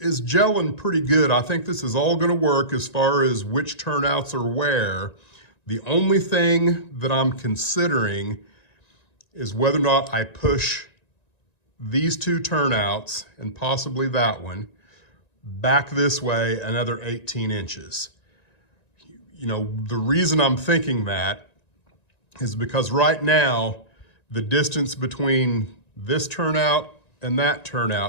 gelling pretty good. I think this is all going to work as far as which turnouts are where. The only thing that I'm considering is whether or not I push these 2 turnouts, and possibly that one, back this way another 18 inches. The reason I'm thinking that is because right now, the distance between this turnout and that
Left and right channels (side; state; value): right; late; 1.9 ms